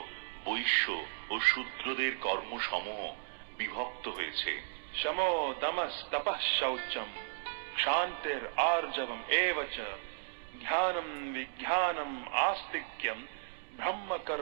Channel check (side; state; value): left; silent; digital silence